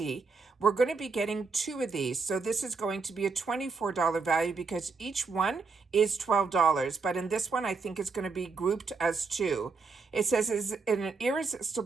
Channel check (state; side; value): quieter; left; 4.4 dB